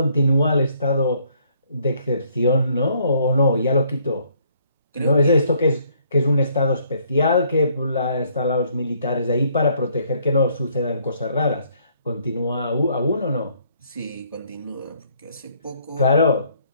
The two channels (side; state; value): both; inverted; correlation -0.66